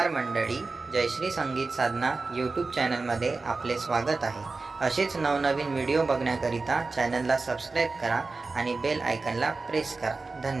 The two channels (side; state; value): left; quieter; 3.9 dB